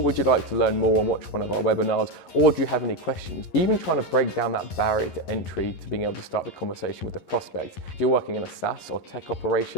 you like to learn more and watch one of our webinars? Or do you have any questions? Even trying to break down that barrier to entry to being able to start the conversation with the prospect. If you're working in a SaaS or tech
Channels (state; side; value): late; right; 11 ms